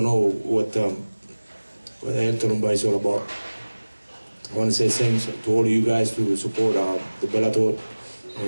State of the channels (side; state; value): both; inverted; correlation -1.00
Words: know what the hell tournament is all about. I want to say thanks to all of you guys to support the Bellator,